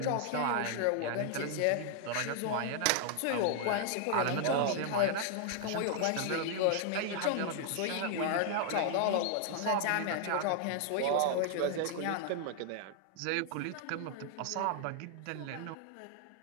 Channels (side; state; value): both; different; correlation 0.00